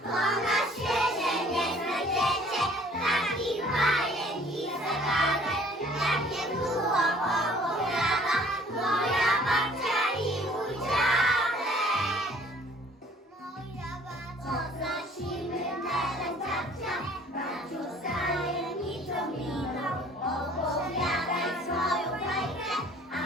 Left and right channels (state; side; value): normal; both; correlation 0.55